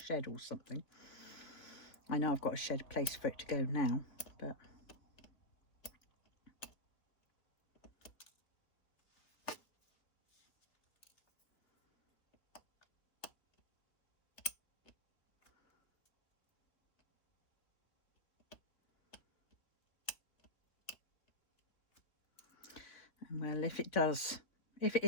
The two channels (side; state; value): right; late; 3.3 ms